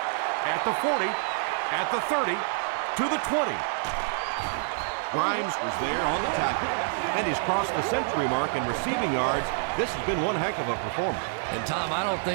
at the 40, at the 30, to the 20. Grimes was there on the tackle, and he's crossed the century mark in receiving yards. This has been one heck of a performance. And Tom, I don't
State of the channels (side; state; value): left; silent; digital silence